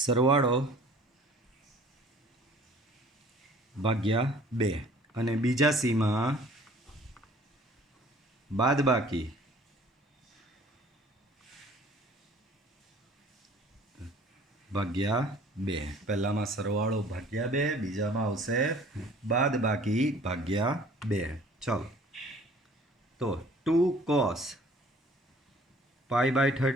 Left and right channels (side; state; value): both; normal; correlation 0.52